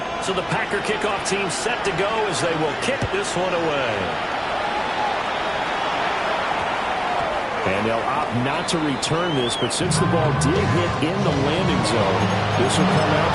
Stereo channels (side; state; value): both; identical; correlation 1.00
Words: So the Packer kickoff team set to go as they will kick this one away. And they'll opt not to return this, but since the ball did hit in the landing zone, this will come out